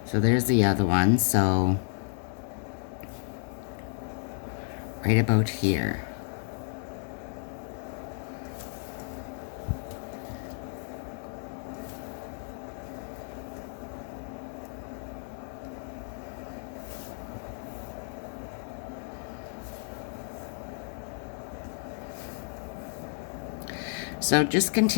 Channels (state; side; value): silent; right; 57 dB below the other